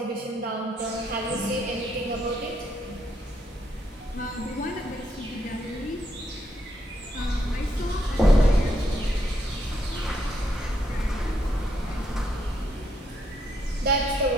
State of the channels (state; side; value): normal; both; correlation 0.76